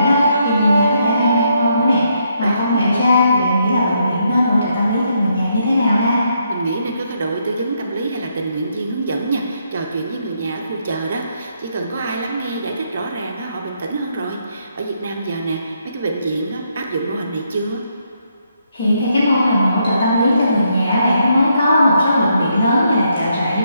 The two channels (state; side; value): inverted; both; correlation -0.76